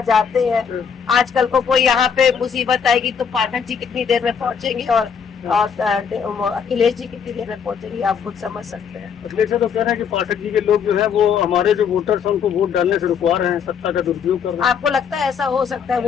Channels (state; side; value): quieter; right; 6.9 dB